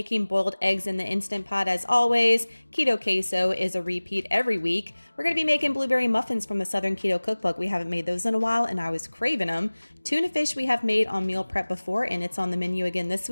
boiled eggs in the Instant Pot as always. Keto Queso is a repeat every week. We're going to be making blueberry muffins from the Southern Keto Cookbook. We haven't made those in a while and I was craving them. Tuna fish we have made on meal prep before and it's on the menu again this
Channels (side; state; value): both; inverted; correlation -1.00